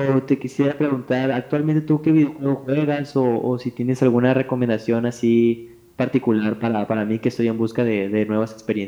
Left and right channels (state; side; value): identical; both; correlation 1.00